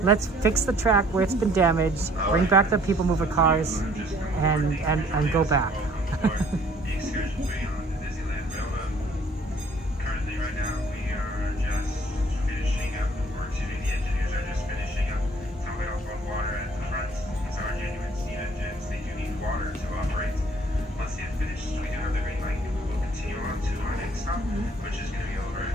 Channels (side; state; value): both; normal; correlation 0.58